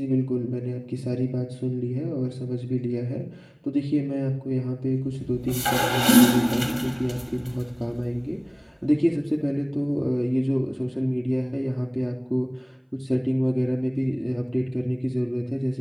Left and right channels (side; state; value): both; identical; correlation 1.00